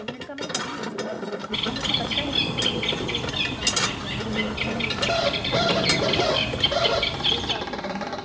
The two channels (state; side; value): identical; both; correlation 1.00